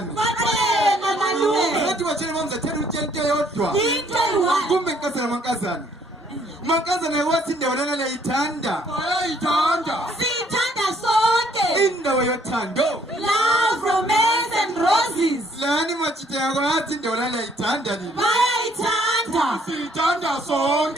bathenga malume bathi batshele mamzathela utshela into eyodwa into eyi-1 kumbe mankazana mankazana wathi indawo lana liyayithanda siyithanda sonke indawo yothando love romance and roses lani machita yako yathi indawo lana liyayithanda nini bayayithanda siyithanda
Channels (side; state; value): both; normal; correlation 0.65